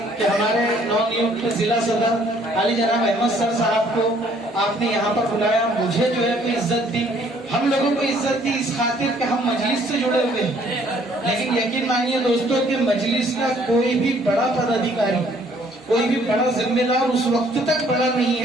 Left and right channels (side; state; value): both; normal; correlation 0.61